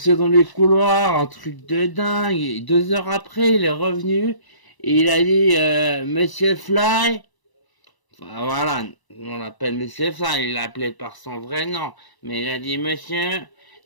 dans les couloirs, un truc de dingue. Et 2 heures après, il est revenu et il a dit Monsieur Fly. Enfin, voilà, on l'appelle Monsieur Fly, il l'appelait par son vrai nom. Mais il a dit Monsieur,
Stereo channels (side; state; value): right; late; 1.0 ms